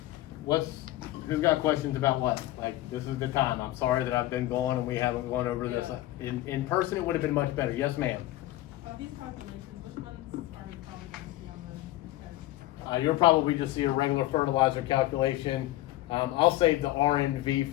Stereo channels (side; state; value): right; quieter; 16.1 dB